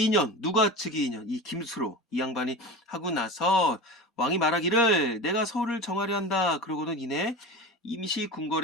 2년 누가 즉위 2년 이 김수로 이 양반이 하고 나서 왕이 말하기를 내가 서울을 정하려 한다. 그러고는 이내 임시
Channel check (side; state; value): both; normal; correlation 0.29